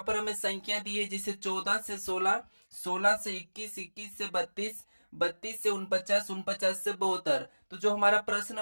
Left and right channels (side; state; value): both; inverted; correlation -1.00